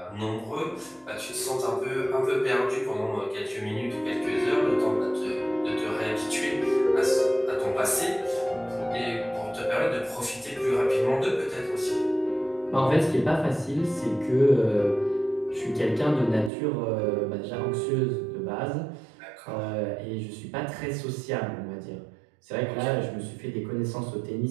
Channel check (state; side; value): drops out; left; at 16.5 s